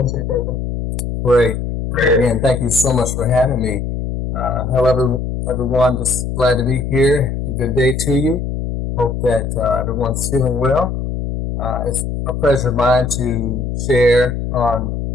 Again, thank you so much for having me. Hello, everyone. Just glad to be here. Good day to you. Hope that everyone's feeling well. It's a pleasure of mine to share on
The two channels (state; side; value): noise; left; hum, 4 dB below the sound